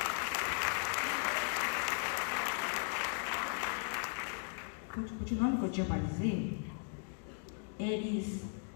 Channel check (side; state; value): right; silent; 53 dB below the other